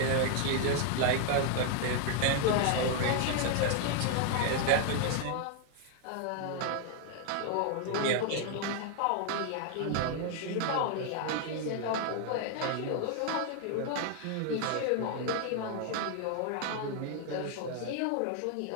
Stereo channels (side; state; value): both; different; correlation 0.00